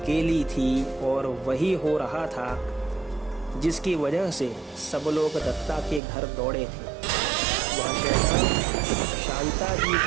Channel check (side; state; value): left; drops out; at 6.0 s